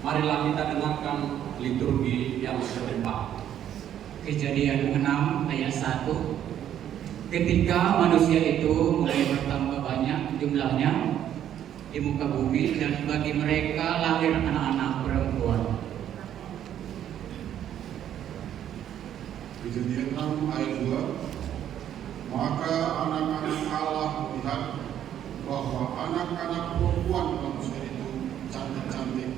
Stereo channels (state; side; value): quieter; left; 10.5 dB